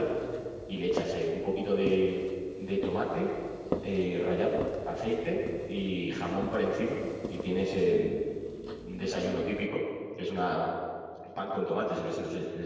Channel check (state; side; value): identical; both; correlation 1.00